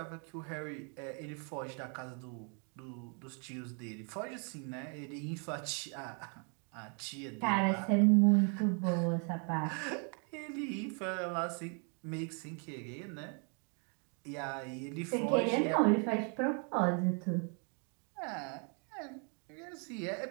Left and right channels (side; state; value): left; quieter; 38.8 dB